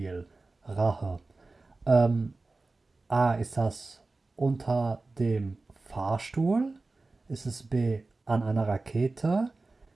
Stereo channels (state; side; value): quieter; left; 3.4 dB